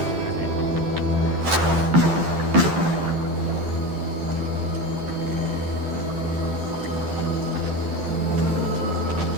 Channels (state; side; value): late; left; 12 ms